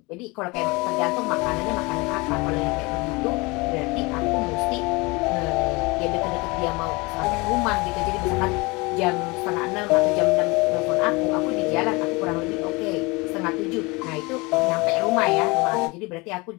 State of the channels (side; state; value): right; quieter; 25.4 dB